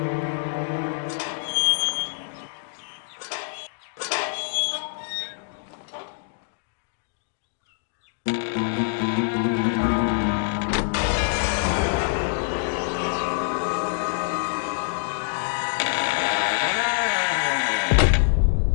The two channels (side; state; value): right; silent; digital silence